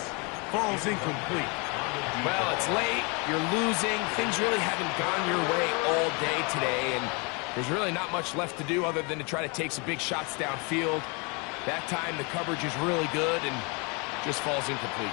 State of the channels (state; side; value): quieter; right; 31.3 dB